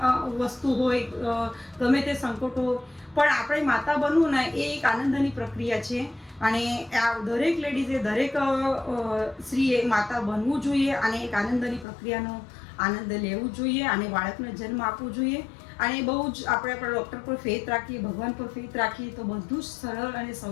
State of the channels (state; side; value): drops out; right; at 11.9 s